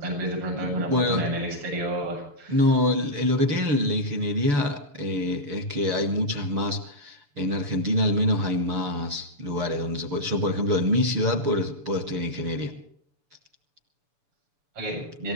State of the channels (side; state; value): left; late; 6.9 ms